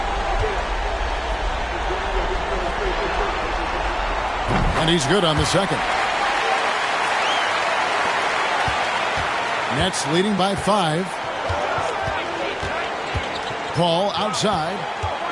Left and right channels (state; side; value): identical; both; correlation 1.00